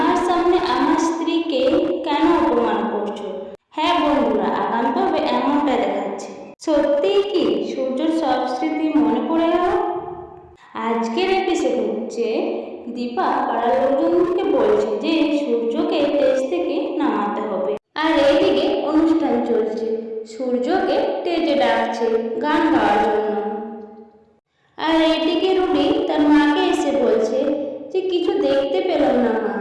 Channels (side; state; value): both; identical; correlation 1.00